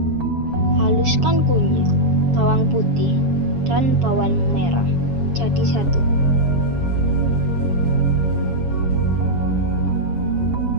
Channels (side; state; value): left; late; 7.2 ms